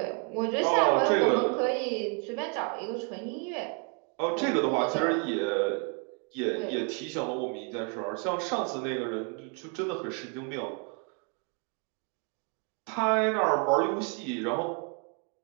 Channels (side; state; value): left; quieter; 37.3 dB